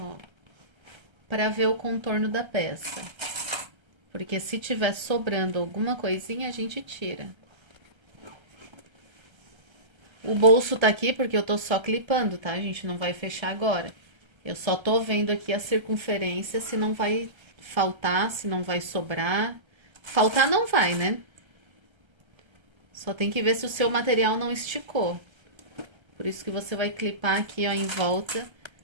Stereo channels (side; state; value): left; late; 1.3 ms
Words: pra ver o contorno da peça. Porque se tiver sobrando alguma coisinha, a gente tira. O bolso tá aqui porque eu tô só clipando, tá? A gente não vai fechar agora. Eu só tô vendo aqui a circunferência, se não vai faltar, se não vai sobrar. Faltar não vai, né? Só tem que ver se o seu material não esticou. Por isso que você vai clipar aqui, ó, em volta.